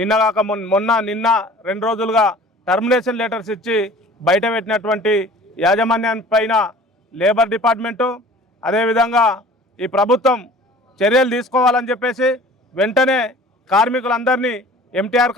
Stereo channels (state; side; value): normal; both; correlation 0.46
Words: 2 రోజులుగా టర్మినేషన్ లెటర్స్ ఇచ్చి బయట పెట్టినటువంటి యాజమాన్యాన్ని పైన లేబర్ డిపార్ట్మెంటు అదేవిధంగా ఈ ప్రభుత్వం చర్యలు తీసుకోవాలని చెప్పేసి వెంటనే కార్మికులందరినీ ఎంటీఆర్